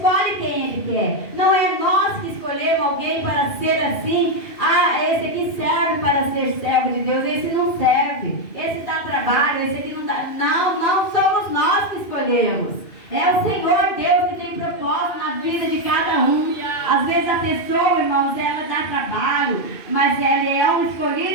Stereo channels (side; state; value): right; late; 2.5 ms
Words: quem Ele quer. Não é nós que escolhemos alguém para ser assim. Ah, esse aqui serve para ser servo de Deus. Esse não serve. Esse dá trabalho. Esse aqui não dá. Não somos nós que escolhemos. É o Senhor Deus que tem propósito na vida de cada um. Às vezes a pessoa, irmãos, ela dá trabalho, mas ela é um